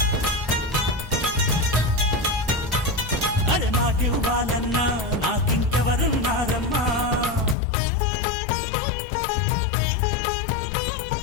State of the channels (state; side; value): drops out; right; at 7.6 s